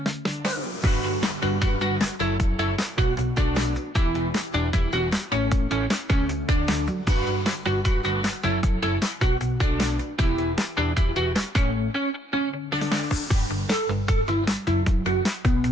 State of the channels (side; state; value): both; normal; correlation 0.74